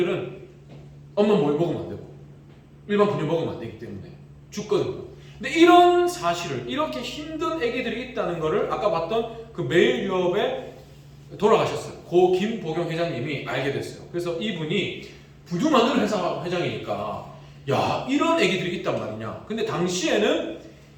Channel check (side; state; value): both; identical; correlation 1.00